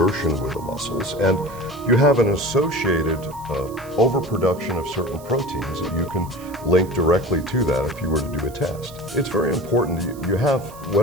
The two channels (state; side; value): noise; right; hiss, 21 dB below the sound